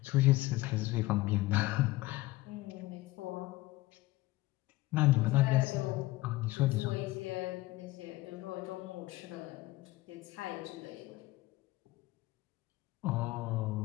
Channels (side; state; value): right; quieter; 18.7 dB